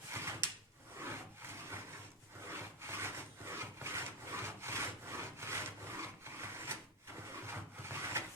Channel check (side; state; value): both; normal; correlation 0.08